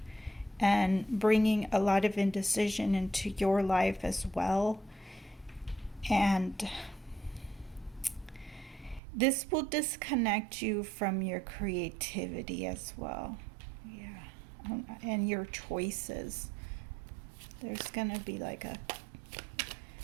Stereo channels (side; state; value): left; drops out; at 9.0 s